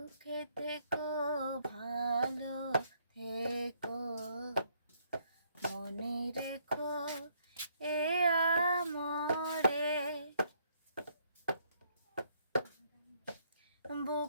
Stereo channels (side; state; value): both; inverted; correlation -0.69